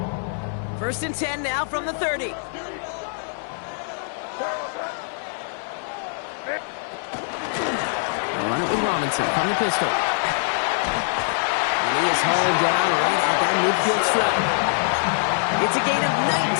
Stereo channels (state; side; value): silent; right; 63 dB below the other